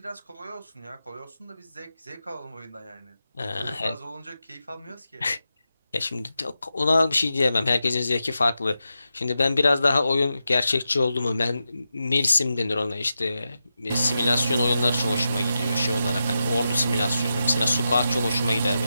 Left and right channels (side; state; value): both; inverted; correlation -0.89